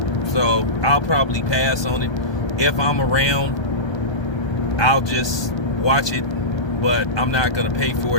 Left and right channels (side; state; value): right; late; 1.3 ms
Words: So I'll probably pass on it. If I'm around, I'll just watch it. But I'm not going to pay for